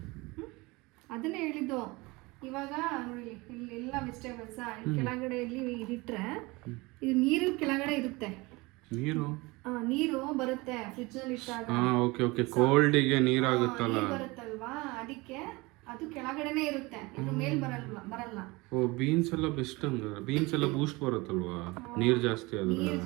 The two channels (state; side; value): quieter; left; 23.5 dB